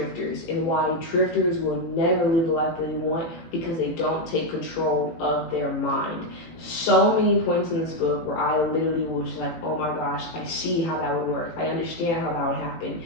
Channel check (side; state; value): right; late; 18 ms